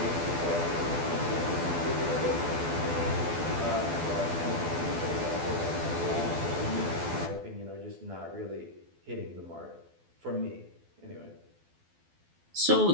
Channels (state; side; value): late; left; 12 ms